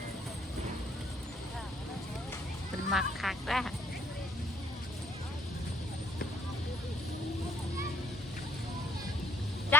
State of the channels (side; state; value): both; normal; correlation 0.64